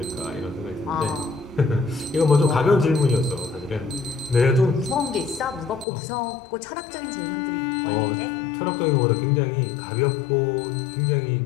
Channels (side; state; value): right; drops out; at 5.9 s